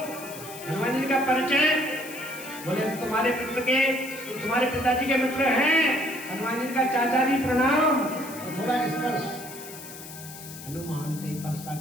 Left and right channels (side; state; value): left; noise; hiss, 14 dB below the sound